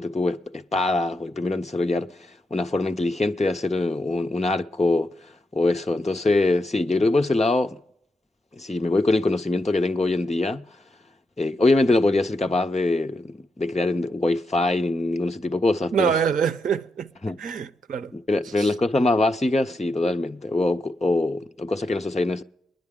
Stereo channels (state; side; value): normal; both; correlation 0.84